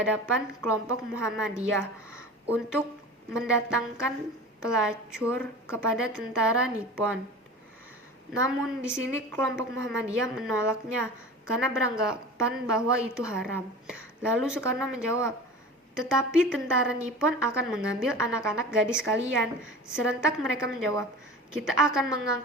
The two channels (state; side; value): normal; both; correlation 0.36